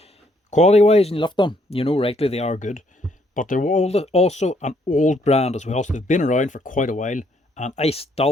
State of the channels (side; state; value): both; normal; correlation 0.69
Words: Quality wise, and you lift them, you know rightly they are good. But they're also an old brand as well, so they've been around for quite a while. And I